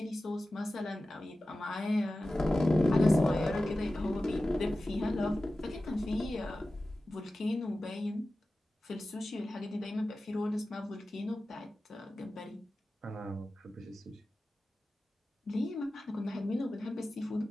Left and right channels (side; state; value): both; normal; correlation 0.95